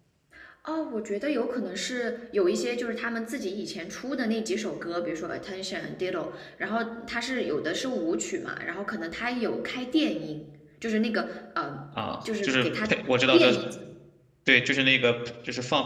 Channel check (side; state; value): both; identical; correlation 1.00